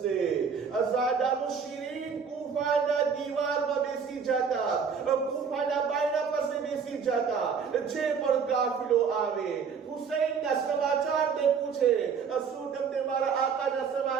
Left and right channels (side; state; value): left; quieter; 6.2 dB